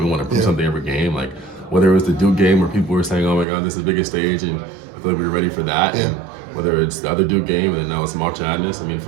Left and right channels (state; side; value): drops out; left; at 3.5 s